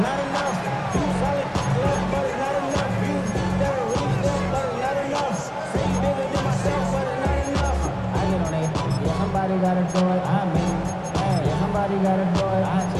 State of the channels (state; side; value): identical; both; correlation 1.00